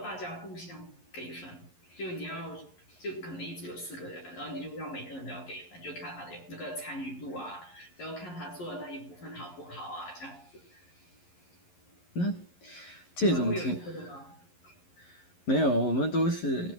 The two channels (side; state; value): right; late; 11 ms